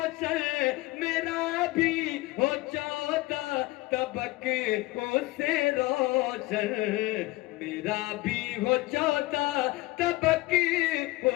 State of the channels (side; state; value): right; quieter; 20.1 dB